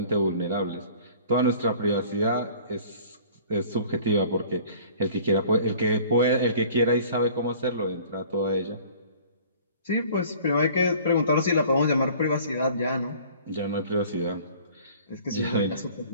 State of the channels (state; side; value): inverted; both; correlation -0.49